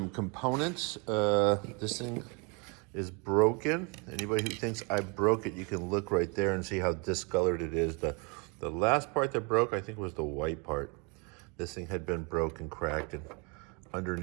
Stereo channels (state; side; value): quieter; left; 32.0 dB